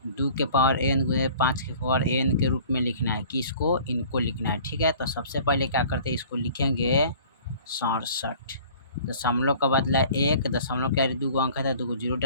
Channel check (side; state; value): both; inverted; correlation -0.49